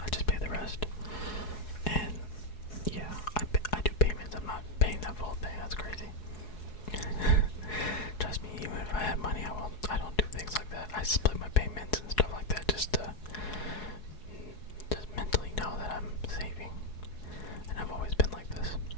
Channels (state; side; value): late; right; 4.7 ms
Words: I just pay the rest, and yeah, I do payments. I'm not paying that full thing. That's crazy. Trust me, even if I had money, I don't do things like that. I split my payments and stuff like that just to mentally know that I'm saving, and I've always been like this.